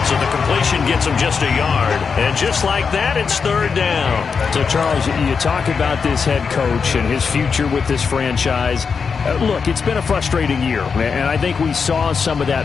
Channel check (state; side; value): quieter; right; 5.7 dB